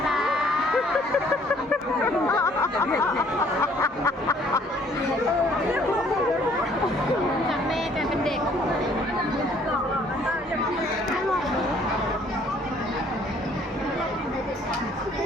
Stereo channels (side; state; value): both; normal; correlation 0.60